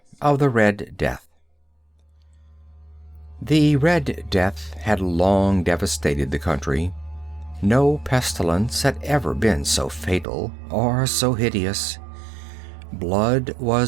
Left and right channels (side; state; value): left; drops out; at 10.2 s